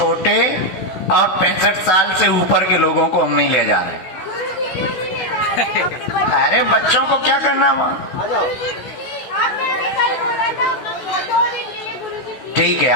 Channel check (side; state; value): right; late; 16 ms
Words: और 65 साल से ऊपर के लोगों को हम नहीं ले जा रहे। अरे बच्चों को क्या करना वहाँ? आ जाओ। ठीक है,